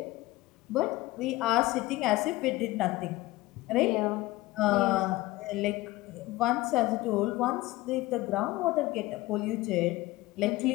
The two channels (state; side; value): quieter; right; 18.9 dB